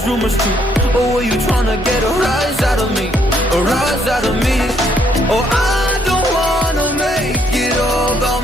rumors true? Or were you trying to get a rise out of me? A rise out of me? Oh, I don't wanna make it all about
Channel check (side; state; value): both; normal; correlation 0.70